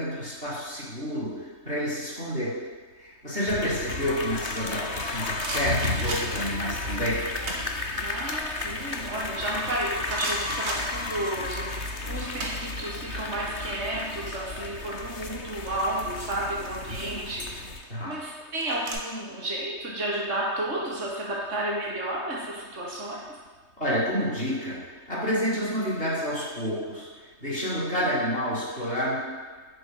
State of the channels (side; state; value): left; late; 3.2 ms